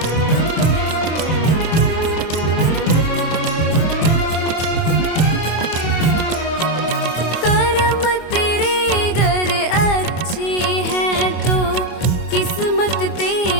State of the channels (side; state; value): right; late; 24 ms